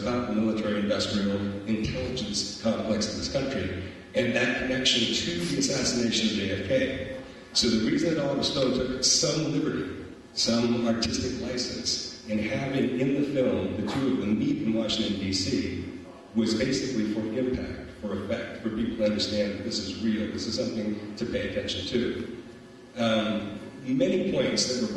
the military-industrial intelligence complex of this country, and that connection to the assassination of JFK. So the reason that Oliver Stone took some liberty, some artistic license, in having in the film the two of them meet in Washington, D.C., was basically for impact, for effect, for people to understand that this is real, this is something to pay attention to. Many points that were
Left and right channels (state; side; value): identical; both; correlation 1.00